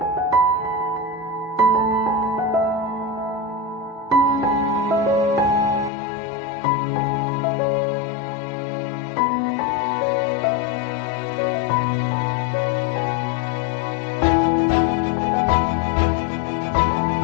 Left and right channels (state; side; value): drops out; right; at 5.9 s